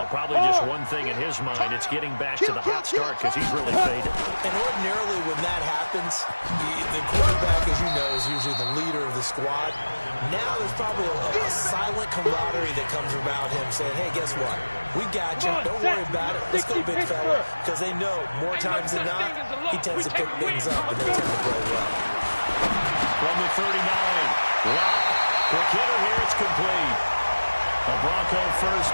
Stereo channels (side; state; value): both; inverted; correlation -1.00